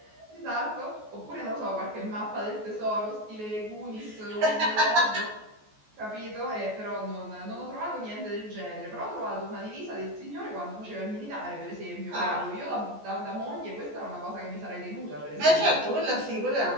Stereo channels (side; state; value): left; late; 14 ms